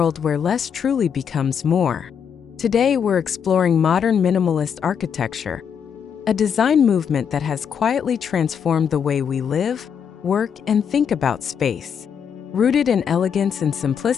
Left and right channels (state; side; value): quieter; right; 7.5 dB